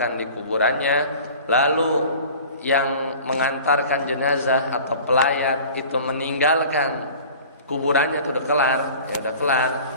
di kuburannya, lalu yang mengantarkan jenazah atau pelayat itu meninggalkan kuburannya, itu udah kelar, ya udah kelar.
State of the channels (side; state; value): both; inverted; correlation -0.42